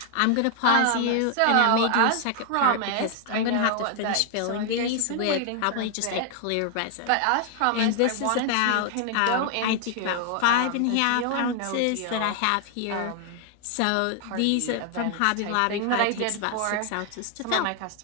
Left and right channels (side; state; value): both; different; correlation 0.00